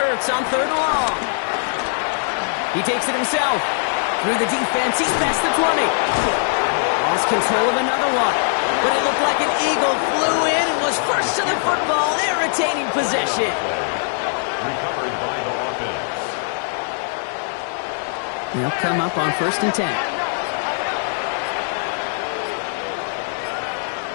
on 3rd and long. He takes it himself. Through the defense, he's past the 20. Lost control of another one. But it looked like an Eagle flew in and was first to the football. They're retaining possession. Recovered by the offense. They'll come up on 1st and 10.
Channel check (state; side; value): silent; right; 56 dB below the other